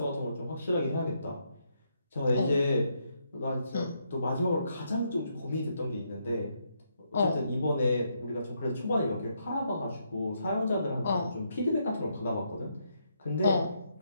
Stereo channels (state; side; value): inverted; both; correlation -0.77